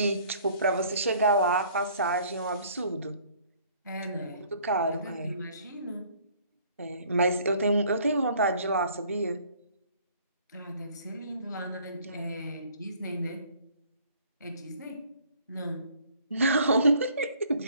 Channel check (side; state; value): both; inverted; correlation -0.57